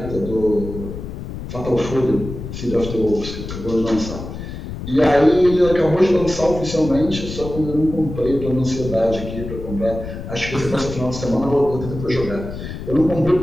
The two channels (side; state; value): left; noise; rumble, 9 dB below the sound